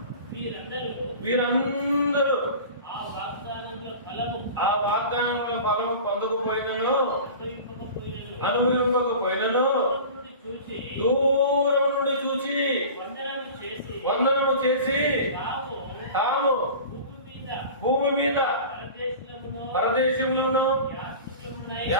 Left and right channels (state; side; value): inverted; both; correlation -0.37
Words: వీరందరూ ఆ వాగ్దానంలో ఫలము పొందకపోయినను, అనుభవింపకపోయినను దూరం నుండి చూచి వందనము చేసి తాము భూమి మీద పరదేశంలోనూ